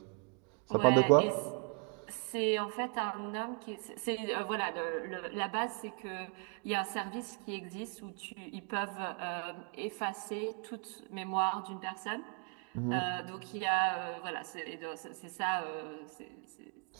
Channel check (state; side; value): quieter; left; 37.3 dB